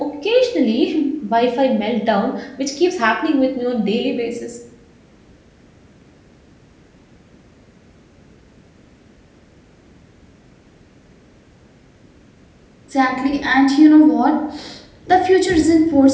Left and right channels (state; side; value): identical; both; correlation 1.00